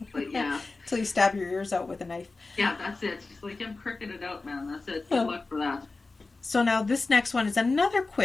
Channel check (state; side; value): quieter; right; 3.6 dB